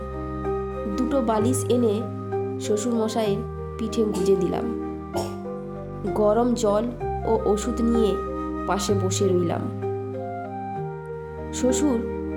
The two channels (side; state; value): both; identical; correlation 1.00